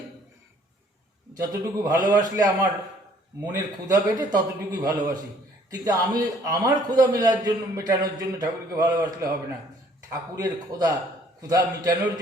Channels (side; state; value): both; normal; correlation 0.60